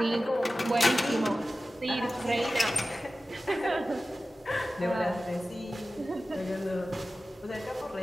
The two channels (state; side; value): normal; both; correlation 0.95